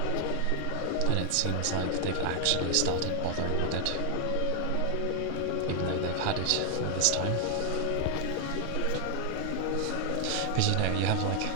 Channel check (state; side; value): different; both; correlation 0.00